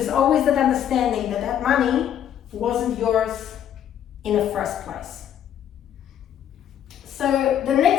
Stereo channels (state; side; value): quieter; right; 10.1 dB